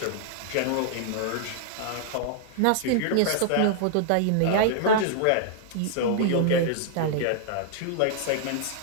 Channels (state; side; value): different; both; correlation -0.01